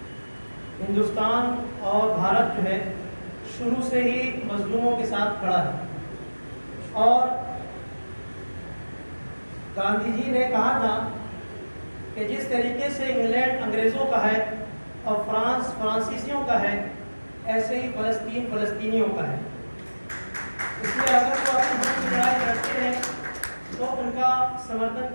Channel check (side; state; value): both; inverted; correlation -1.00